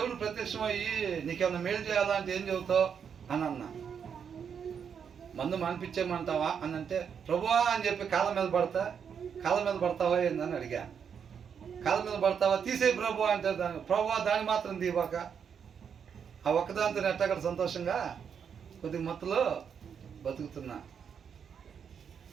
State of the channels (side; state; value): left; quieter; 7.3 dB